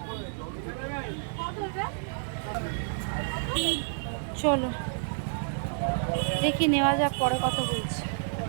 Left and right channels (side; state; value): left; silent; digital silence